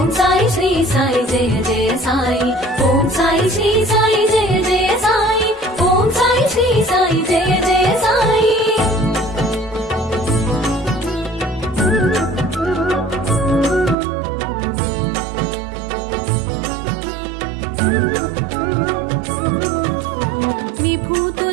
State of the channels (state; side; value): drops out; left; at 14.0 s